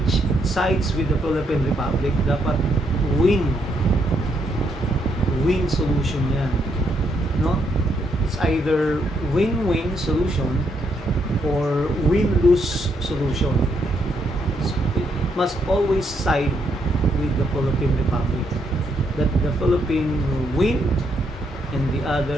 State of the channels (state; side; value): normal; both; correlation 0.76